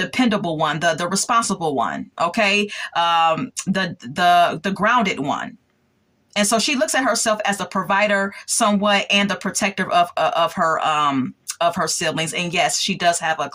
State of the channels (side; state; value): both; identical; correlation 1.00